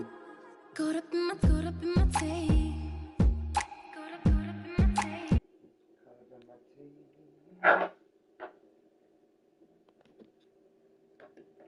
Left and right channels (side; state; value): both; identical; correlation 1.00